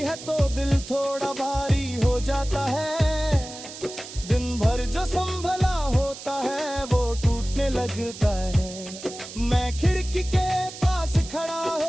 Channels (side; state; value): right; noise; hiss, 13 dB below the sound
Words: तो दिल थोड़ा भारी हो जाता है। दिन भर जो संभला होता है वो टूटने लगता है। मैं खिड़की के पास खड़ा